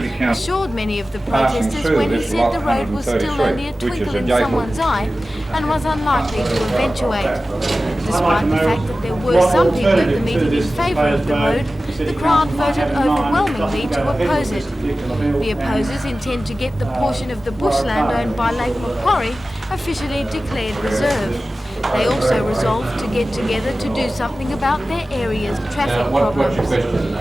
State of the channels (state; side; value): normal; both; correlation 0.95